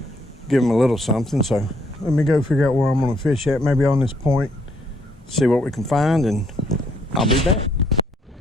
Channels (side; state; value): both; normal; correlation 0.69